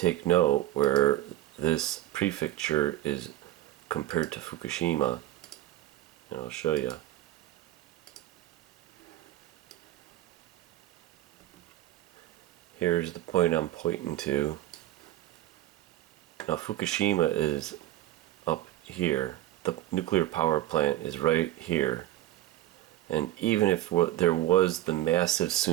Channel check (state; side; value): quieter; left; 14.6 dB